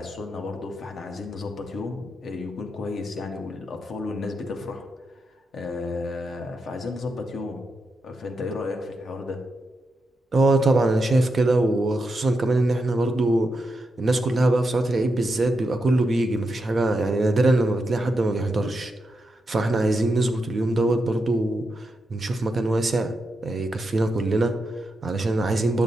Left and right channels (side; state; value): both; normal; correlation 0.85